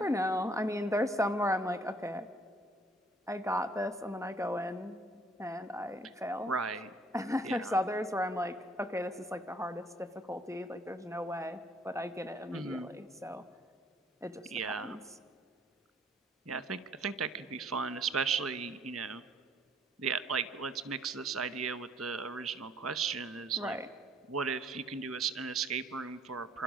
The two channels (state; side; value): normal; both; correlation 0.61